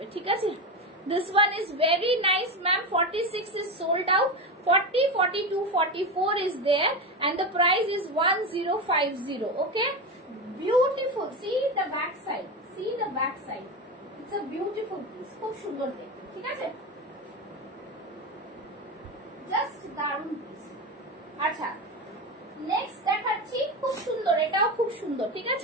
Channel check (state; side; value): normal; both; correlation 0.19